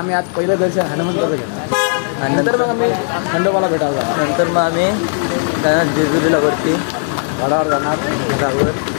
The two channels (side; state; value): right; silent; 69 dB below the other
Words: आज पहिलं दर्शन हनुमंताचं घेतलं आणि नंतर मग आम्ही खंडोबाला भेटायला जाणार। नंतर मग आम्ही जाणार जेजुरीला वरती गडावर जाणार, घरावर